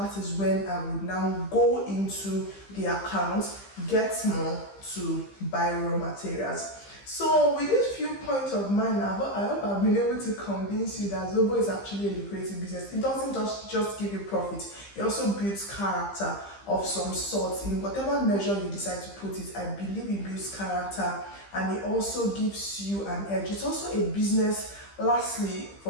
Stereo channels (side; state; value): right; late; 15 ms